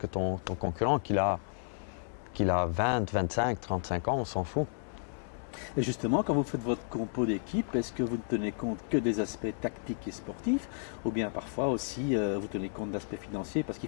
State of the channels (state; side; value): silent; right; digital silence